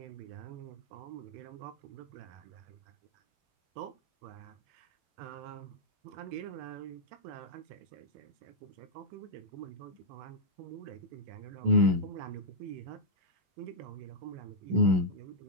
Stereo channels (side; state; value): left; late; 17 ms